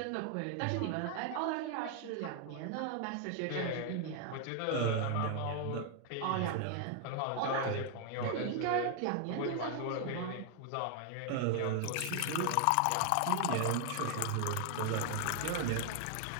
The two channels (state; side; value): different; both; correlation 0.00